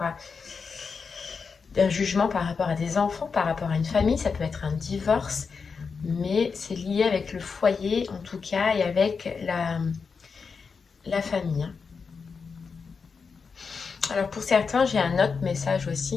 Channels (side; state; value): right; quieter; 5.3 dB